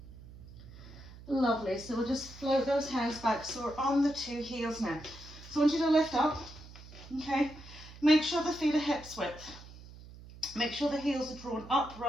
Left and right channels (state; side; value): noise; right; hum, 17 dB below the sound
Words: Lovely, so we'll just float those hands back. So we're on the two heels now. So I want you to lift up, okay? Make sure the feet are hips width. Make sure the heels are drawn up